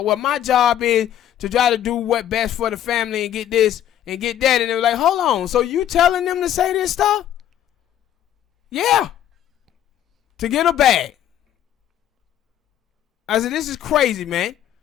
well, my job is to try to do what's best for the family and get this and get that. And they were like, hold on. So you telling them to say this stuff? Yeah. To get a bag. I said, this is crazy, man.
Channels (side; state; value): right; quieter; 11.1 dB